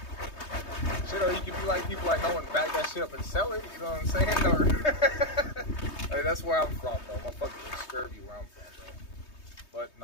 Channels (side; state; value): right; late; 3.2 ms